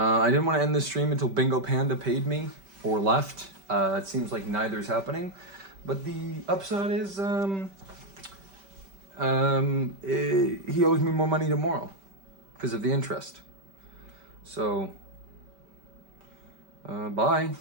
didn't want to end this stream until Bingo Panda paid me or left. It seems like neither is happening. But the upside is he owes me more money tomorrow because of the interest. So, bye.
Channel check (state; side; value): late; left; 5.1 ms